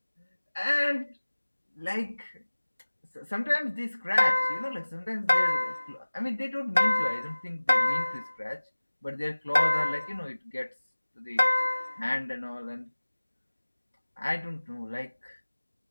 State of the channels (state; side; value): inverted; both; correlation -1.00